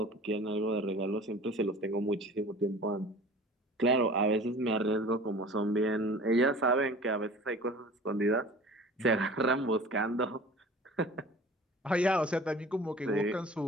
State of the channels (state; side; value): normal; both; correlation 0.43